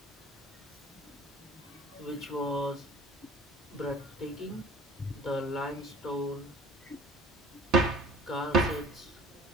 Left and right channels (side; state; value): both; normal; correlation 0.48